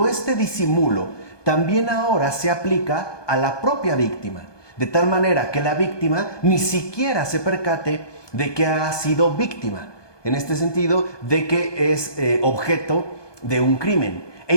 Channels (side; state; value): right; late; 1.2 ms